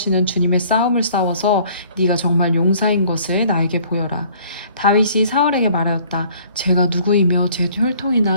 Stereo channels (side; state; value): both; inverted; correlation -0.55